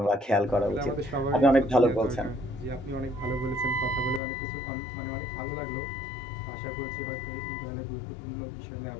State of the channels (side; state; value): right; drops out; at 4.2 s